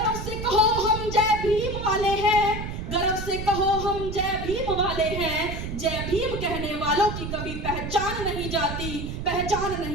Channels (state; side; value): noise; right; rumble, 6 dB below the sound